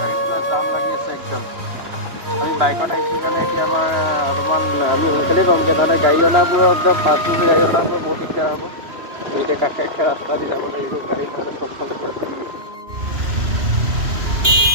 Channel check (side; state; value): left; late; 3.1 ms